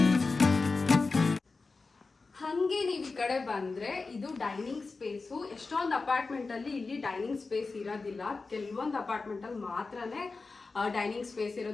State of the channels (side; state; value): right; quieter; 4.0 dB